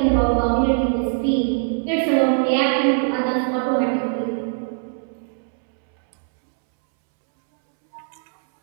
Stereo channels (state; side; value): silent; left; 65 dB below the other